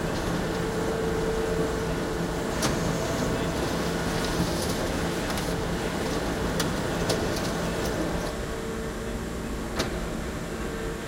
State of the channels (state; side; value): identical; both; correlation 1.00